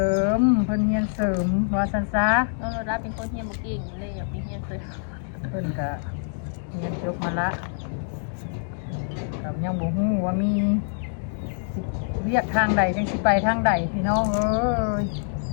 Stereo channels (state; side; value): silent; right; digital silence